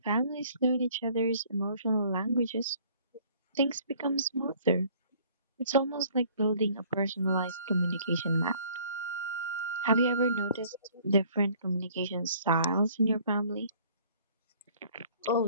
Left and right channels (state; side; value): inverted; both; correlation -0.56